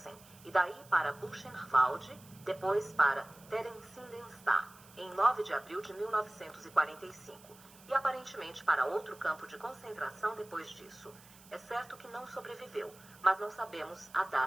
e daí para Buchenwald, depois para Theresienstadt, em 9 de abril de 1945. E aparentemente para outro campo de concentração depois disso. É certo que não sobreviveu, mas não sabemos a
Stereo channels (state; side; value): noise; right; hiss, 23 dB below the sound